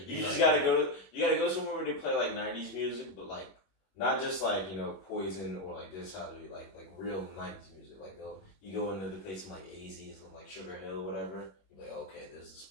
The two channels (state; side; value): late; right; 21 ms